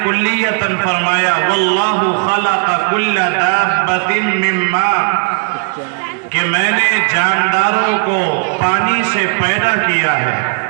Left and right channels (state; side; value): quieter; left; 37.0 dB